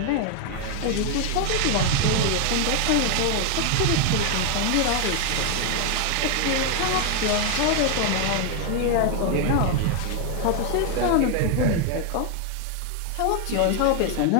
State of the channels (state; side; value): different; both; correlation 0.01